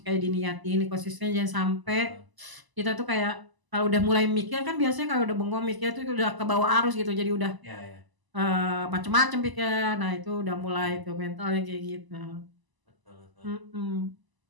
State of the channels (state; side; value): late; left; 1.0 ms